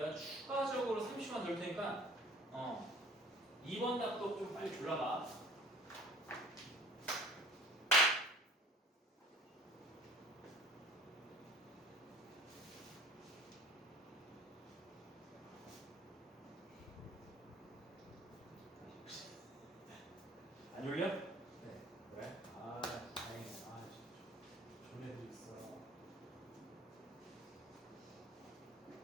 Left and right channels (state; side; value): normal; both; correlation 0.48